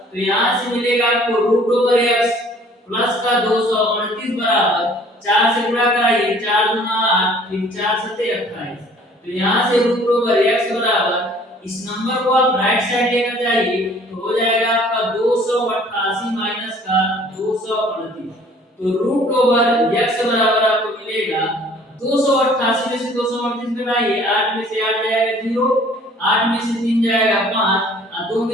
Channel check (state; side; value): normal; both; correlation 0.54